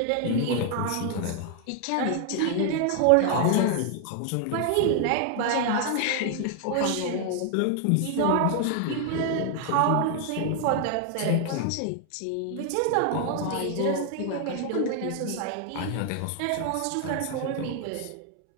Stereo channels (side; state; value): both; different; correlation 0.00